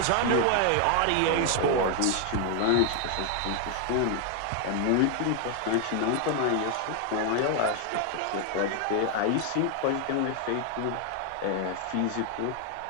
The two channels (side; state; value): both; different; correlation 0.00